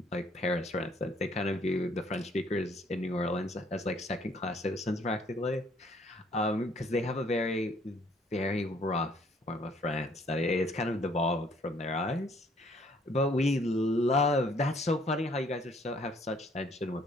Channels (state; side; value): normal; both; correlation 0.63